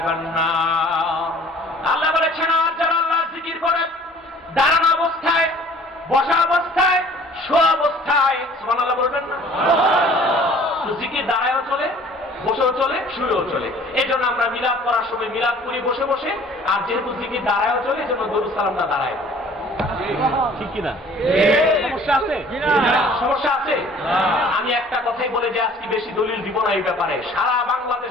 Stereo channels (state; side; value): normal; both; correlation 0.51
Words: নার। আল্লাহ বলেছেন আর যারা আল্লাহর জিকির করে দাঁড়ানো অবস্থায়, বসা অবস্থায়, শোয়া অবস্থায়, সুবহানাল্লাহ বলবেন না? জিকির দাঁড়ায়ও চলে, বসেও চলে, শুয়েও চলে। এই জন্য আমরা মিলাদ করার সময় মিলাদ করি বসে বসে, আর যেহেতু জিকির দাঁড়ায়ও চলে এই জন্য দরুদ সালামটা দাঁড়ায়। ঠিক কিনা? সমস্যা আছে? সমস্যা আছে? আমি একটা কথাই বলে যে আজকে বেশি দলিল দিব না এই ব্যাপারে। সারা